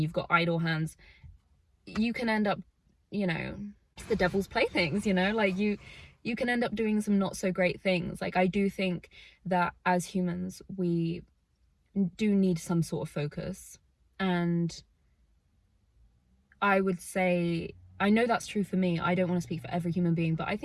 got idle hands, you can end up, you know, it's the devil's playthings, you know? Like, you can end up doing some not so great things. Like, I do think that as humans, we do need some sort of focus. And I would say, I know that's true for me. I don't want to speak for every human being, but I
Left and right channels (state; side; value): identical; both; correlation 1.00